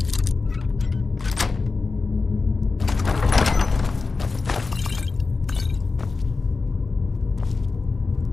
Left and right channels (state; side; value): quieter; right; 4.1 dB